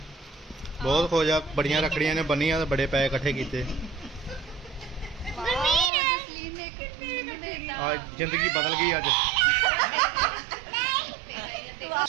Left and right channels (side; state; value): left; drops out; at 5.9 s